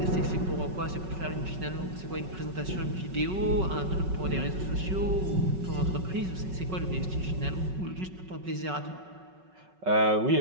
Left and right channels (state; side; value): late; left; 5.4 ms